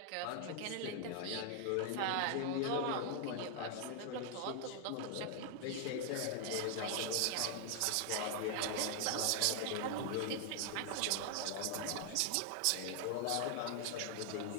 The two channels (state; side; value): different; both; correlation 0.00